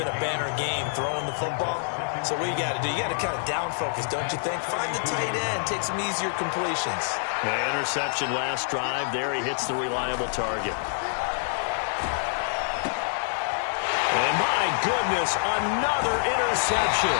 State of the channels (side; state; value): right; silent; digital silence